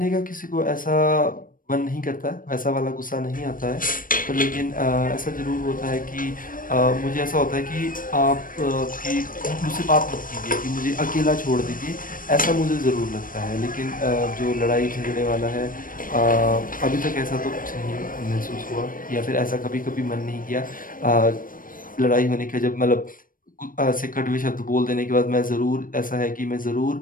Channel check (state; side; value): late; right; 0.40 ms